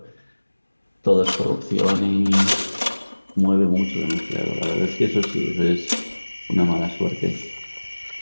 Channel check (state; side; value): inverted; both; correlation -1.00